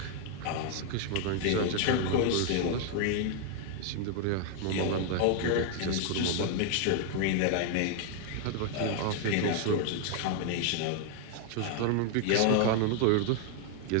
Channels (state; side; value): different; both; correlation 0.00